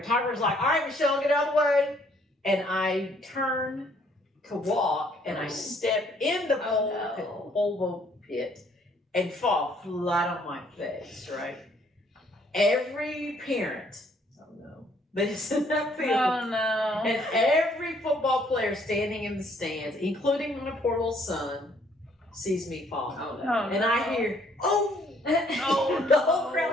like, all right, Michelle, get out of the way. And I turn to walk and I step in the pole pit and fall flat on my face, right? Every parent, that is in that field, Oh no. and every football player standing in the stands, including my poor little son, sees me fall. Oh, Oh, And I hear, oh! Oh, The whole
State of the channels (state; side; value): normal; both; correlation 0.64